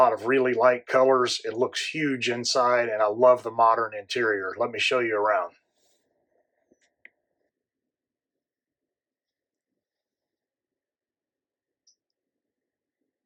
of really light colors. It looks huge inside, and I love the modern interior. Let me show you around.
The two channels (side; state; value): both; identical; correlation 1.00